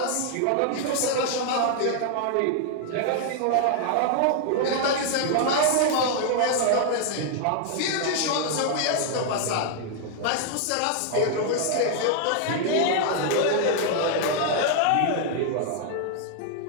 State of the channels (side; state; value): both; different; correlation 0.00